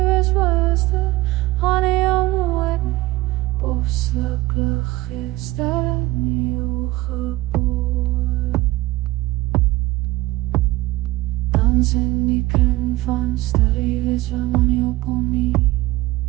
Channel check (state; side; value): quieter; left; 18.8 dB